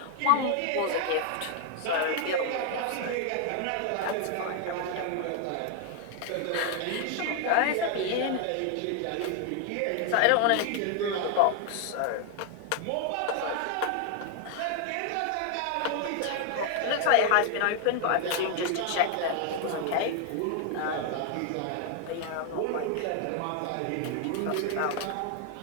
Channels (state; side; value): different; both; correlation 0.00